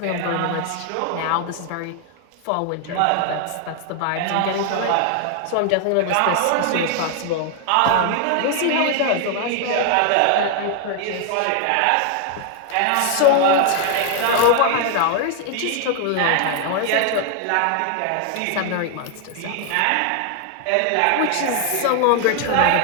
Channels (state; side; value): different; both; correlation 0.00